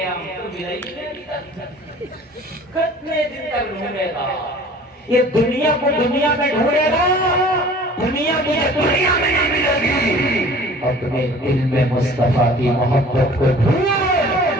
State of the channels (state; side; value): normal; both; correlation 0.47